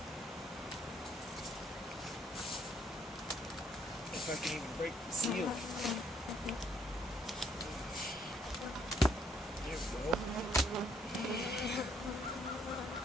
If I can even break the seal. There we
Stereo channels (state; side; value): normal; both; correlation 0.67